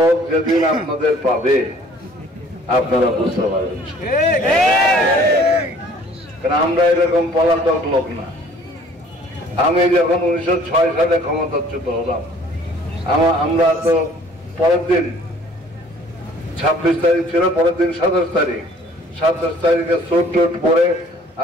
যেদিন আপনাদের পাবে আপনারা বুঝতে পারবেন। কারণ আমরা এরকম পলাতক লোক না। আমি যখন 1906 সালে ক্ষমতাচ্যুত হলাম, আমরা তো পরের দিন 26 তারিখ ছিল, পরের দিন 27 তারিখে চোট পরে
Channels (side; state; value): both; normal; correlation 0.55